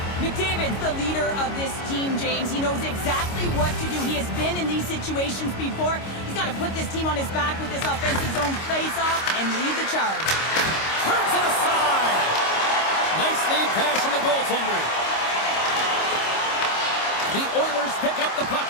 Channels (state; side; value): late; right; 25 ms